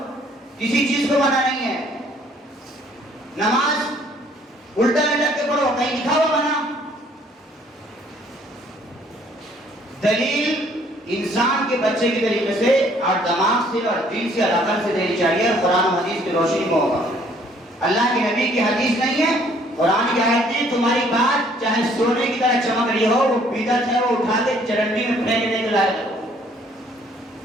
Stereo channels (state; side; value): normal; both; correlation 0.61